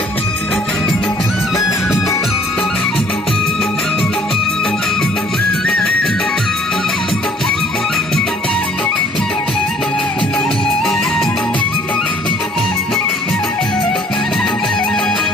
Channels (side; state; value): both; normal; correlation 0.58